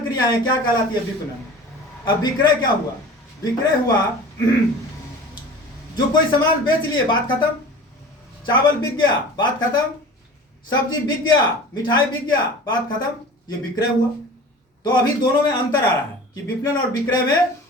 क्रियाएं क्या कहलाती है? विपणन। अब विक्रय क्या हुआ? विक्रय हुआ जो कोई सामान बेच लिए, बात खत्म। चावल बिक गया, बात खत्म। सब्जी बिक गया, मिठाई बिक गया, बात खत्म। ये विक्रय हुआ। तो अभी दोनों में अंतर आ रहा है कि विपणन और विक्रय में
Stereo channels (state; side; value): normal; both; correlation 0.39